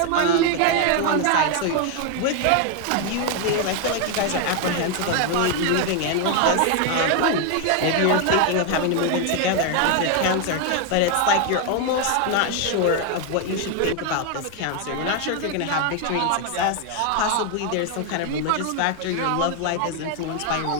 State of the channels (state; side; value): different; both; correlation 0.01